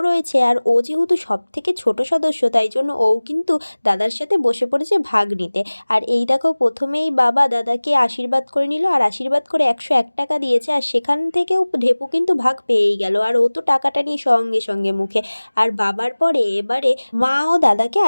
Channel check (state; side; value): inverted; both; correlation -1.00